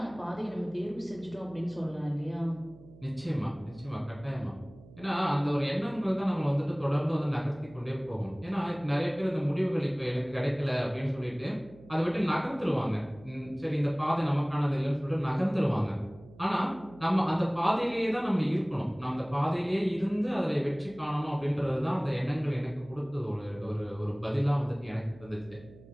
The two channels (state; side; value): noise; right; hum, 21 dB below the sound